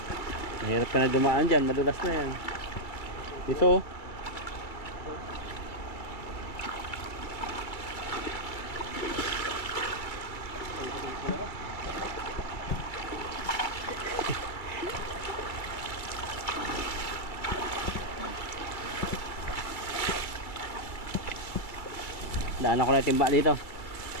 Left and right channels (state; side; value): late; right; 2.2 ms